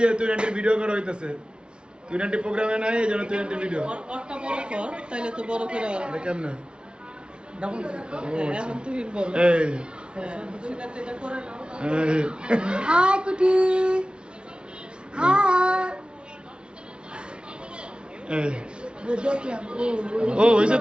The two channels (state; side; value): late; left; 0.056 ms